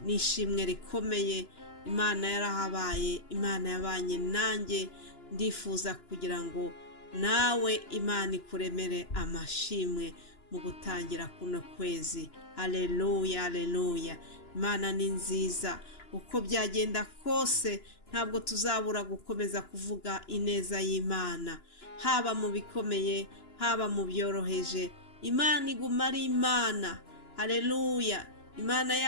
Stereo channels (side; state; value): right; late; 2.9 ms